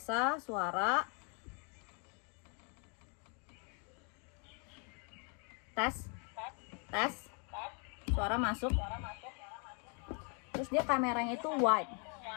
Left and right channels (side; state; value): right; quieter; 37.8 dB